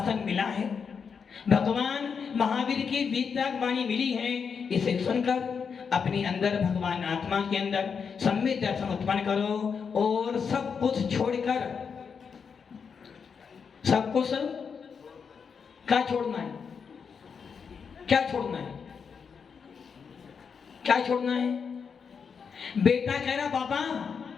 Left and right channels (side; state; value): right; quieter; 6.2 dB